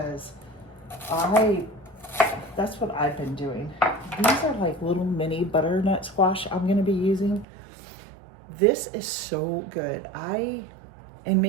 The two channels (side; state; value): left; drops out; at 7.5 s